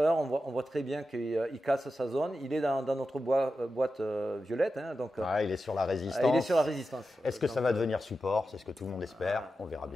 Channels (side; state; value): both; normal; correlation 0.91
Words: on voit très bien qu'il casse sa zone. Il est dans notre boîte violette. Hein, donc, il est sur la résistance. Il est sur la résistance. Est-ce que ça va devenir support? C'est ce que tout le monde espère. On verra